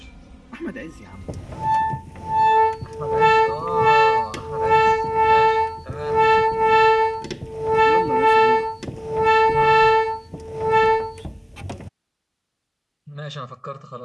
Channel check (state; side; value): identical; both; correlation 1.00